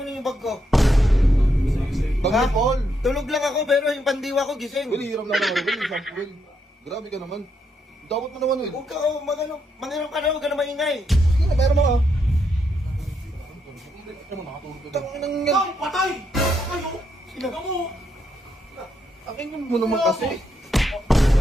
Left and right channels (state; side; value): normal; both; correlation 0.78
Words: yung bag ko? Bag ni Paul. Tulog lang ako pero yung pandiwa ko gising. Well, hiram na lang ako, Will. Isang Will. Grabe ka naman. Dapat mo naman, Will. Huwag ka, mangiram ka na, huwag ka na maingay. Sige na, meron mo ka. Tangin ng yan. Ay, patay! Kayo! Sino mo? Akin mo naman kasi.